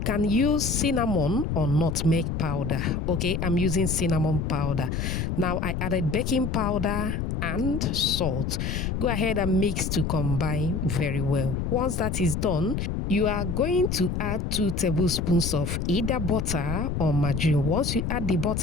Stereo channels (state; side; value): noise; left; rumble, 2 dB below the sound